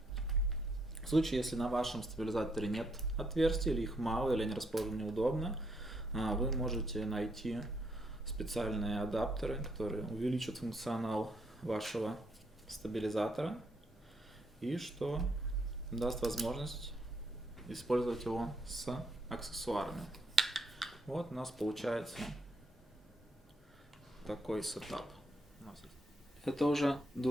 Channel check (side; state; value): both; normal; correlation 0.74